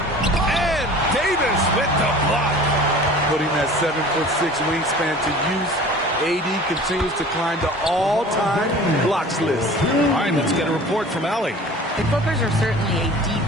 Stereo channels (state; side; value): normal; both; correlation 0.43